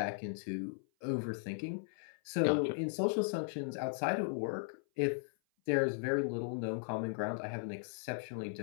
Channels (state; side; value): silent; right; 53 dB below the other